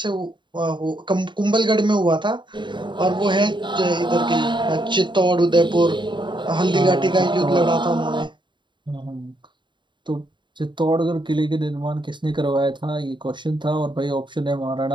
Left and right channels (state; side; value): late; left; 0.23 ms